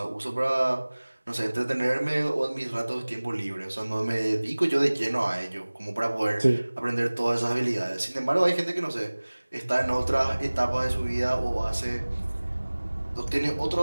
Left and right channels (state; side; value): inverted; both; correlation -1.00